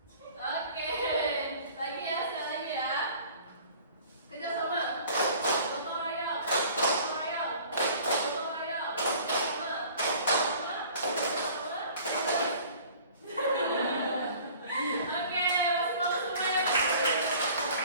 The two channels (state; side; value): inverted; both; correlation -0.49